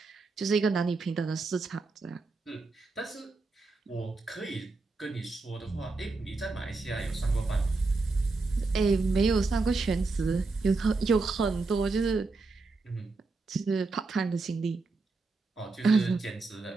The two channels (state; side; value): quieter; left; 3.8 dB